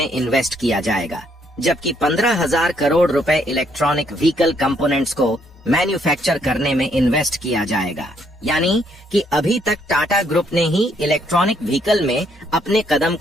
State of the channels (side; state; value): both; normal; correlation 0.70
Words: इन्वेस्ट किया जाएगा, जबकि 15,000 करोड़ रुपए इलेक्ट्रॉनिक व्हीकल कंपोनेंट्स को मैन्युफैक्चर करने में इन्वेस्ट किया जाएगा। यानी कि अभी तक टाटा ग्रुप ने ही इलेक्ट्रॉनिक व्हीकल में अपने कदम